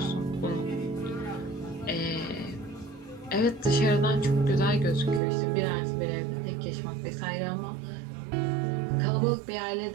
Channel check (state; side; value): drops out; left; at 5.2 s